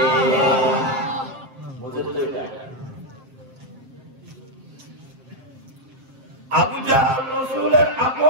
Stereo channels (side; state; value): left; late; 7.5 ms